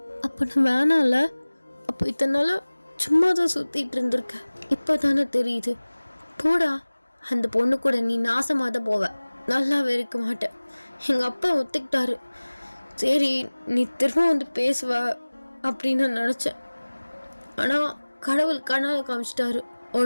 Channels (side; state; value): both; inverted; correlation -1.00